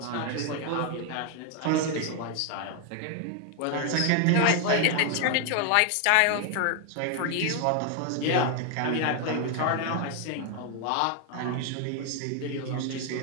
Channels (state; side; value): different; both; correlation 0.00